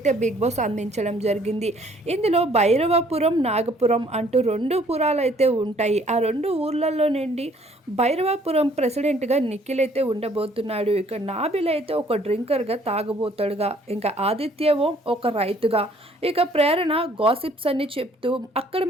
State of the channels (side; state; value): both; normal; correlation 0.60